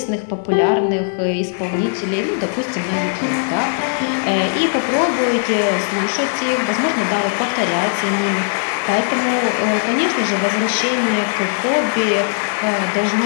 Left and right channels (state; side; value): silent; right; digital silence